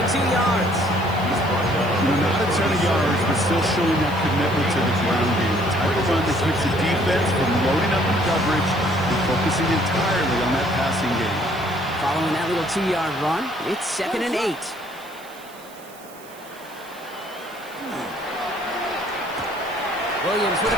2 yards. Not a ton of yards, but still showing that commitment to the ground game. The type of run that keeps the defense from loading up in coverage and focusing entirely on that passing game. Following that little 2-yard run, it's 2nd and 8. Williams with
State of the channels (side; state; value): right; noise; hiss, 22 dB below the sound